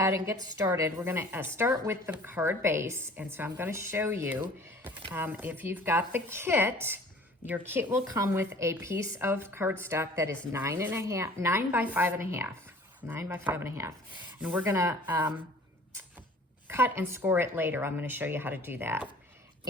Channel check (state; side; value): normal; both; correlation 0.48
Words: and get started. We're going to start with the card base. And so I'm going to show you, if you've got the kit, your kit will come with a piece of cardstock that is 9 by 5.5. 9 by 5.5. And we're gonna cut and score it later. I'm gonna show you how to do that.